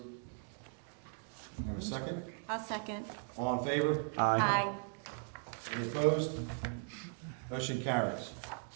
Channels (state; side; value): silent; left; 53 dB below the other